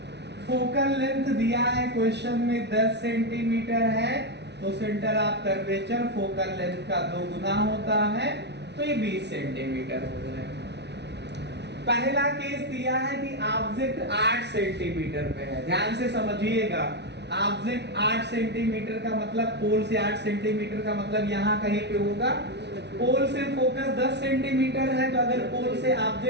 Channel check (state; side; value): late; left; 0.50 ms